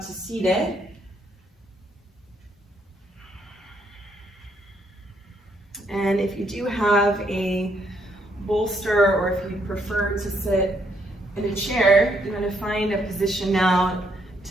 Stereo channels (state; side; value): normal; both; correlation 0.72